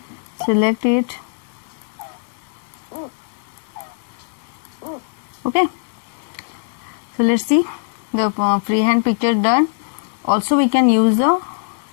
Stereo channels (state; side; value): silent; right; digital silence